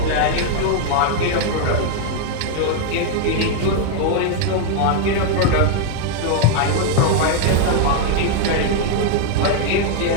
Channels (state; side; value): different; both; correlation 0.00